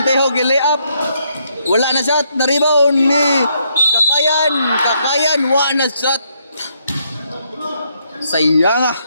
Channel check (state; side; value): inverted; both; correlation -0.75